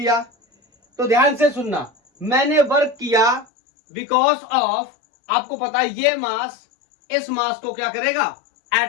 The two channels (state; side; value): drops out; right; at 3.5 s